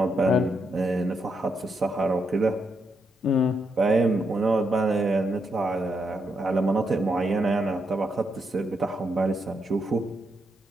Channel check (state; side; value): normal; both; correlation 0.80